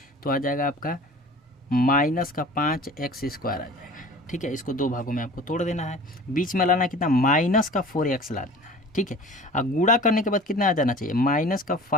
तो आ जाएगा आपका माइनस का 5x² आ जाएगा, ठीक है। इसको 2 भागों में आपको तोड़ देना है, बीच में लाना कितना माइनस का 4x ला देना है, ठीक है। और गुणा करने के बाद कितना आ जाना चाहिए माइनस का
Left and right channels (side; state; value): both; normal; correlation 0.42